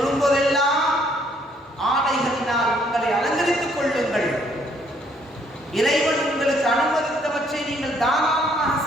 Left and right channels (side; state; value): both; normal; correlation 0.66